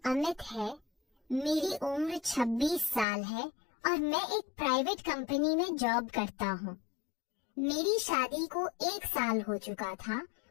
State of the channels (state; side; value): drops out; right; at 3.1 s